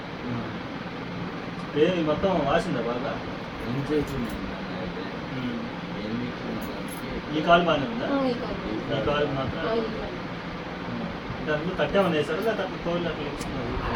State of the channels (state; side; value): identical; both; correlation 1.00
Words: ఏ మొత్తం వాసిందా బాగా? ఏం చేసింది ఈ కాలు బాగానే ఉందా? ఈ కాలు మాత్రం దాంట్లో తట్టేమన్నా వేసారు లేదా అట్లా తోలు అట్లా